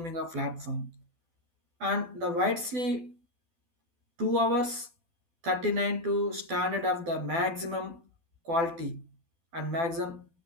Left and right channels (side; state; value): left; late; 12 ms